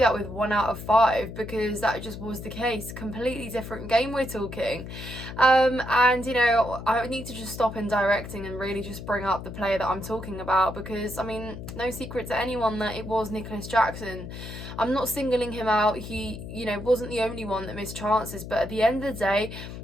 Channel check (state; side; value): noise; left; hum, 10 dB below the sound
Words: with 1 out of 5, because that just was the case. Completely different game we're talking. And you know, I need to just stop in directing and really just bring up the player that I'm talking about, because I mean, no secret to anyone that it was Nicholas Jackson. I'm not singling him out. He, you know, wasn't the only one that missed chances, but at the end of the day,